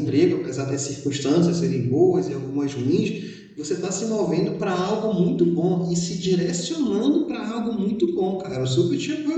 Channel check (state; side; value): identical; both; correlation 1.00